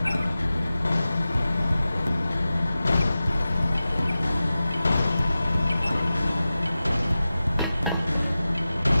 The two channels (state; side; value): inverted; both; correlation -0.95